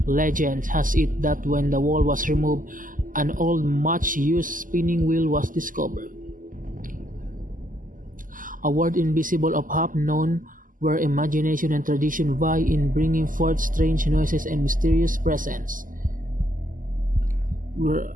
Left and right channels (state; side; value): late; left; 0.39 ms